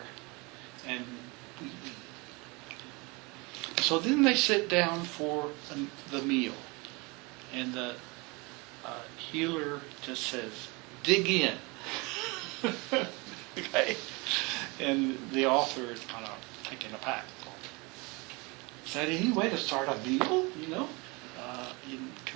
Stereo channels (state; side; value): quieter; left; 27.1 dB